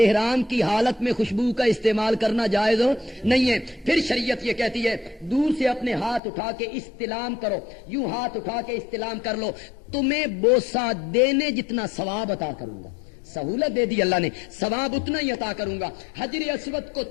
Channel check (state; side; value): drops out; right; at 6.2 s